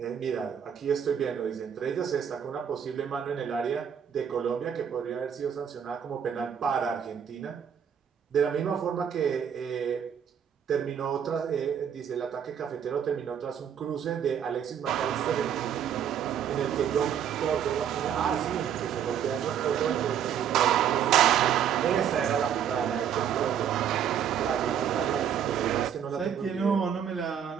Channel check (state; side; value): quieter; left; 8.6 dB